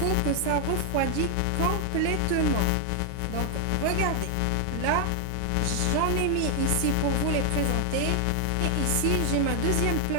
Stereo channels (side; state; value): both; different; correlation 0.00